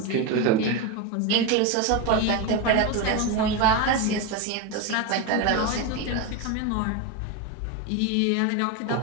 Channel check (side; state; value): both; different; correlation 0.04